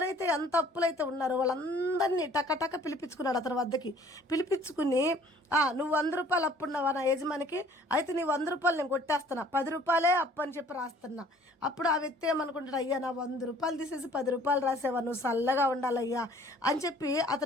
ఎంత అప్పులైతే ఉన్నారో వాళ్ళందరినీ టకటక పిలిపించుకున్నాడు అతని వద్దకి. పిలిపించుకుని, నువ్వు 100 రూపాయలు అప్పున్నావా నా యజమానికి, అయితే నీ 100 రూపాయలు నేను కొట్టేస్తున్నా, 10 రూపాయలే అప్పు అని చెప్పి రాస్తున్నా. అప్పుడు ఆ వ్యక్తి ఏమనుకుంటాడు, అయ్యా నా 100 రూపాయలు తీసేసి 10 రూపాయలు రాసేవా, నువ్వు చల్లగా ఉండాలయ్యా అని చెప్పి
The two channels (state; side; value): normal; both; correlation 0.55